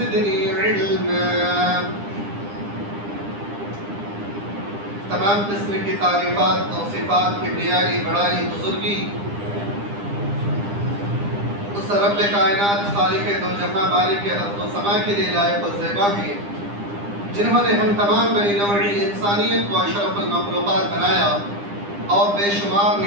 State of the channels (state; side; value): late; left; 9.9 ms